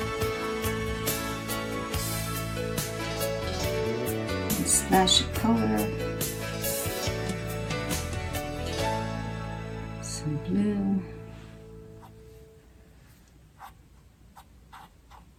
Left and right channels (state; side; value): identical; both; correlation 1.00